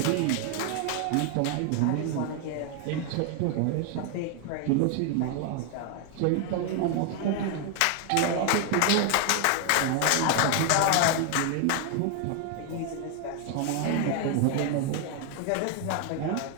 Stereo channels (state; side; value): different; both; correlation 0.00